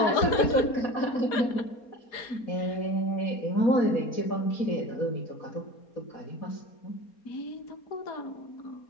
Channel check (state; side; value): late; right; 4.3 ms